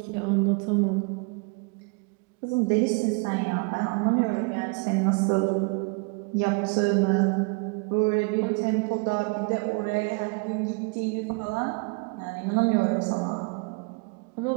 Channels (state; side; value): quieter; left; 31.2 dB